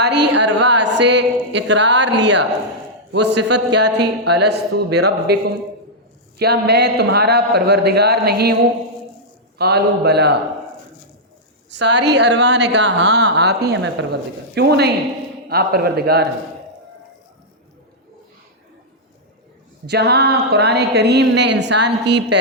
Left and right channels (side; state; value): both; normal; correlation -0.07